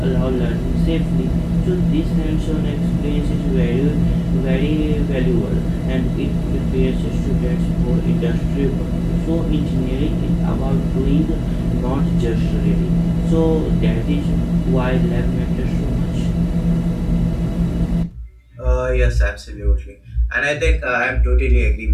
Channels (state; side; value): identical; both; correlation 1.00